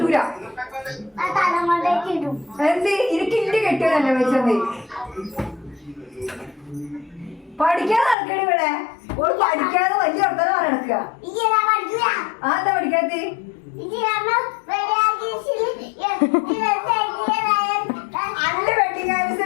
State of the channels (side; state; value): right; drops out; at 8.2 s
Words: എന്ത് എനിക്ക് ഇന്റെ കെട്ടിയതല്ലേ വെച്ചത്? പഠിക്കാതെ നടക്കണ ഇവിടെ. ഓള് പഠിക്കാതെ വലിയ വർത്തനം നടക്കുക. ആ എന്താ പഠിക്കാത്ത? അന്റെ വെഡിങ്